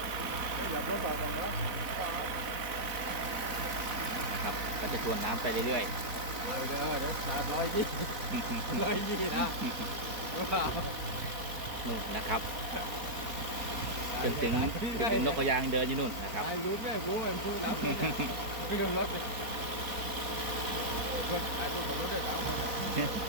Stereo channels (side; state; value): left; late; 4.5 ms